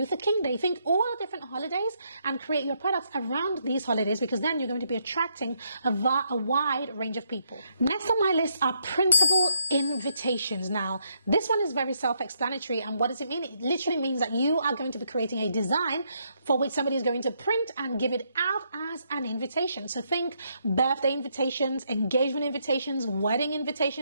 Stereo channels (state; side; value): inverted; both; correlation -0.76